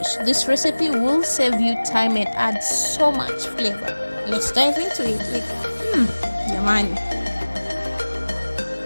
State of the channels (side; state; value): both; inverted; correlation -1.00